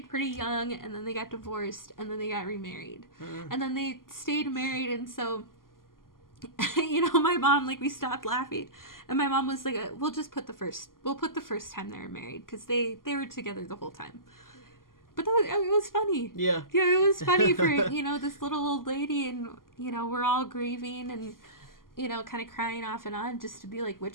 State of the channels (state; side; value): late; right; 0.91 ms